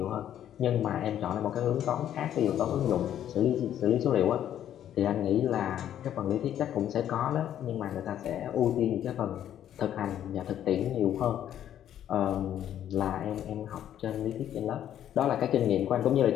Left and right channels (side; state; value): right; quieter; 10.8 dB